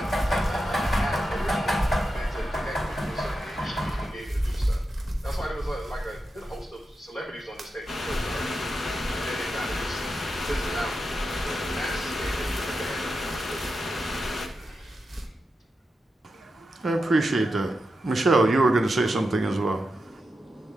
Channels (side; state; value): both; normal; correlation 0.89